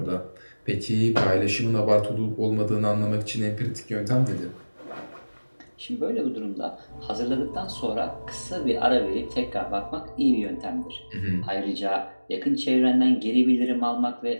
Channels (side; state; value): both; inverted; correlation -1.00